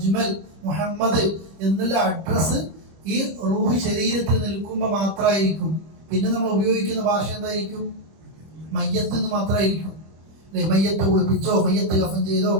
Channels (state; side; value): late; left; 25 ms